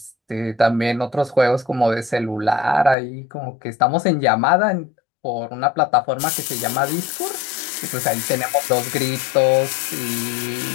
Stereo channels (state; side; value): drops out; right; at 3.0 s